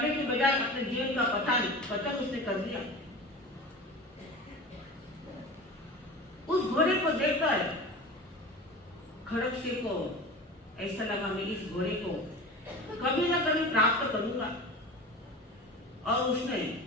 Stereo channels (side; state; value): both; normal; correlation 0.33